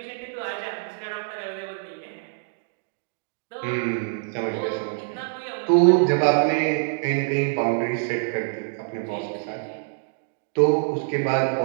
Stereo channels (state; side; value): silent; left; digital silence